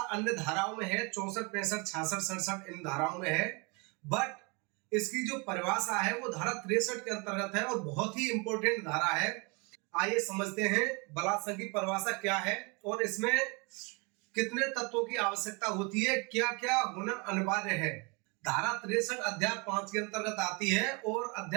अन्य धाराओं में है, 64, 65, 66, 67 इन धाराओं में है, बट इसकी जो परिभाषा है वो धारा 63 के अंतर्गत है और बहुत ही इंपॉर्टेंट धारा है। आइए समझते हैं बलात्संग की परिभाषा क्या है और इसमें कितने तत्वों की आवश्यकता होती है, क्या क्या होना अनिवार्य है। धारा 63 अध्याय 5 के अंतर्गत आती है और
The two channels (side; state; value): left; quieter; 30.3 dB